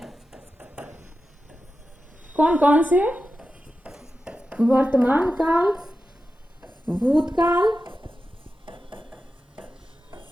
कौन कौन से? वर्तमान काल, भूतकाल,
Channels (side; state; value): both; normal; correlation 0.92